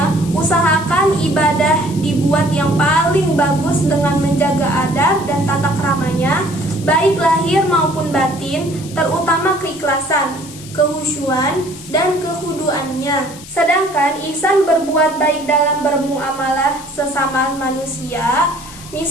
usahakan ibadah dibuat yang paling bagus dengan menjaga adab dan tata keramanya, baik lahir maupun batin, terutama keikhlasan, kehusyuan, dan kehuduannya. Sedangkan ihsan berbuat baik dalam bermuamalah sesama manusia,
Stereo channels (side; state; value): left; noise; hiss, 17 dB below the sound